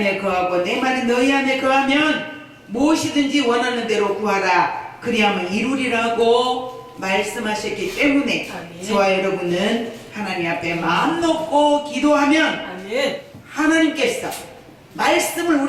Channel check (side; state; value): both; identical; correlation 1.00